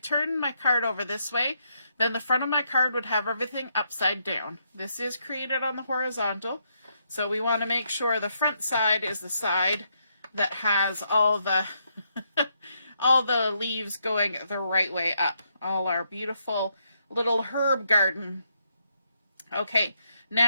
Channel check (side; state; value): both; inverted; correlation -0.77